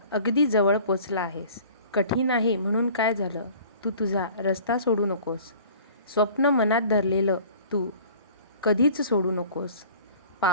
अगदी जवळ पोचला आहेस. कठीण आहे म्हणून काय झालं? तू तुझा रस्ता सोडू नकोस. स्वप्न मनात धरलेलं तू कधीच सोडू नकोस.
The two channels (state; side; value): inverted; both; correlation -0.47